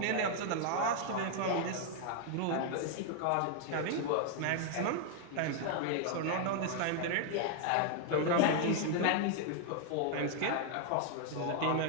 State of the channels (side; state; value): both; different; correlation 0.00